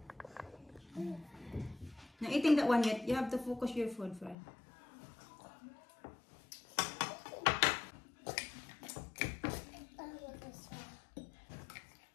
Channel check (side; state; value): right; drops out; at 4.4 s